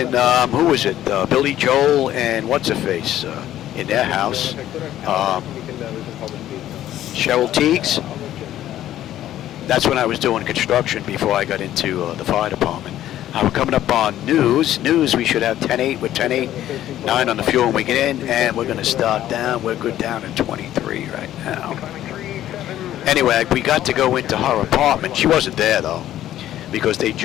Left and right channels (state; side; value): quieter; right; 12.6 dB